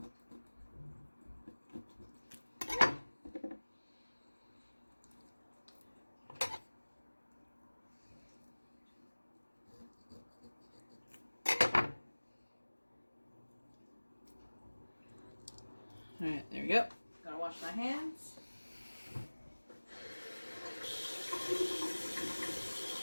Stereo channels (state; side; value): inverted; both; correlation -1.00